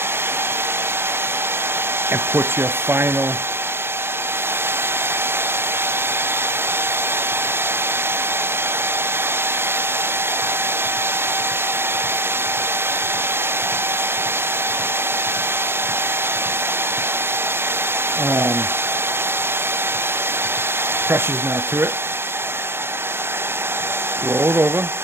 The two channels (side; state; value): left; late; 0.11 ms